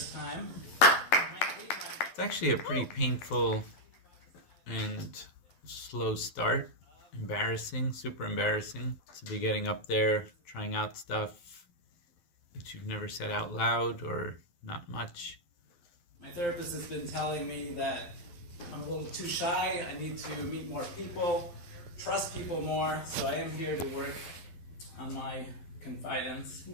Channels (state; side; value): late; right; 12 ms